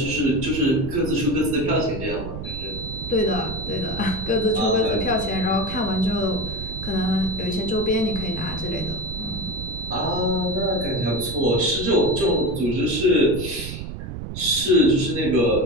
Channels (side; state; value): right; noise; rumble, 8 dB below the sound